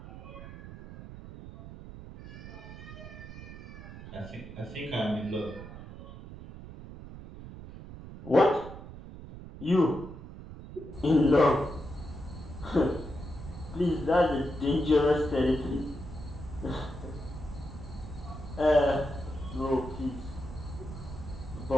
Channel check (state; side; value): noise; right; rumble, 13 dB below the sound